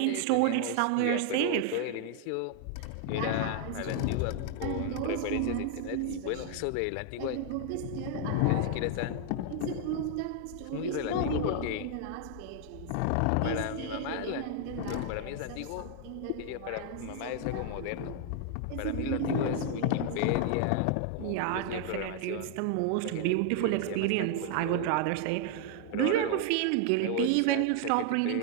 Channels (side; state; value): both; different; correlation 0.00